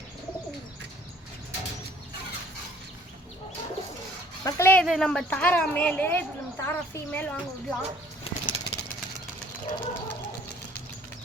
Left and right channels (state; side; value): normal; both; correlation 0.57